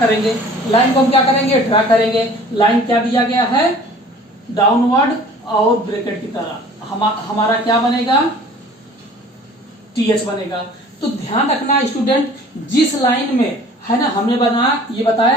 लाइन को हम क्या करेंगे, ड्रा करेंगे। लाइन क्या दिया गया है, डाउनवर्ड और ब्रैकेट की तरह। हमारा क्या बनेगा, टीएच बनेगा। तो ध्यान रखना स्टूडेंट, जिस लाइन में, है ना, हमने ये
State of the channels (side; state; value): both; normal; correlation 0.48